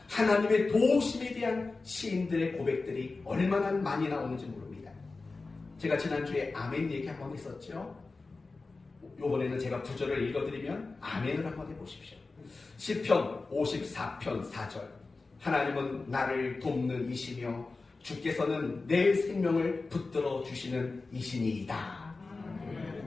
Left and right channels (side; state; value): right; quieter; 3.7 dB